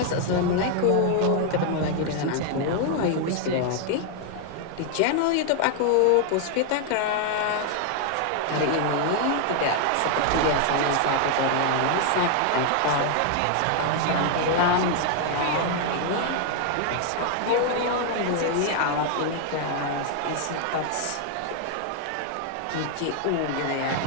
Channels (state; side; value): different; both; correlation 0.00